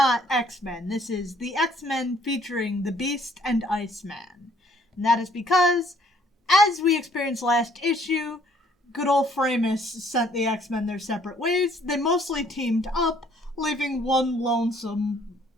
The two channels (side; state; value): both; normal; correlation 0.62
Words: X-Men. This is the X-Men featuring the Beast and Iceman. And that is because, as we experienced last issue, good old Framos sent the X-Men their separate ways. They mostly teamed up, leaving one lonesome